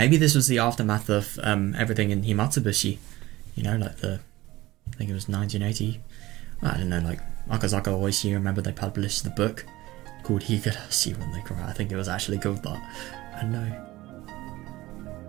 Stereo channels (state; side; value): quieter; left; 18.1 dB